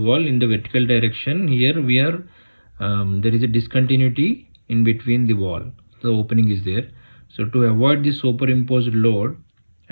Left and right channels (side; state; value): both; inverted; correlation -1.00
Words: in the vertical direction. Here we are, there is a discontinuity in between the wall, the opening is there. So to avoid the superimposed load,